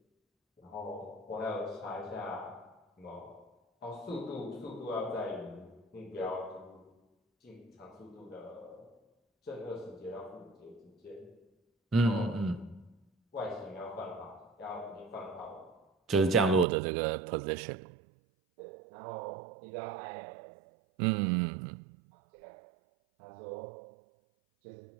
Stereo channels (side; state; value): left; drops out; at 16.7 s